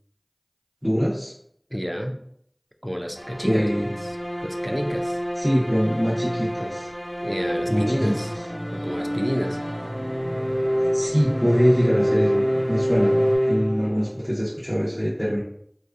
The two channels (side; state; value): both; identical; correlation 1.00